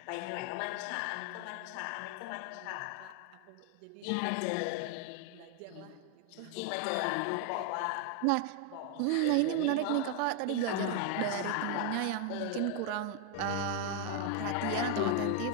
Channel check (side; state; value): both; different; correlation 0.00